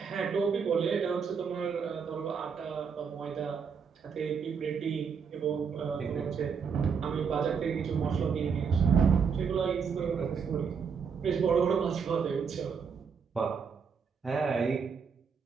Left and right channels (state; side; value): quieter; left; 6.2 dB